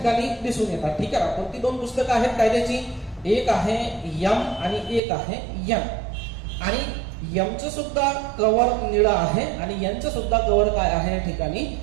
दिसून येतात. ठीक आहे ना? कोणती 2 पुस्तकं आहेत कायद्याची? एक आहे एम आणि एक आहे एन. आणि एमचं सुद्धा कव्हर निळं आहे आणि एनचं सुद्धा कव्हर काय आहे या ठिकाणी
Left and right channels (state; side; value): drops out; left; at 5.0 s